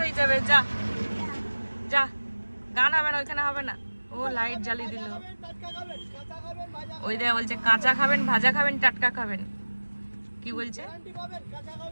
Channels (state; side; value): inverted; both; correlation -1.00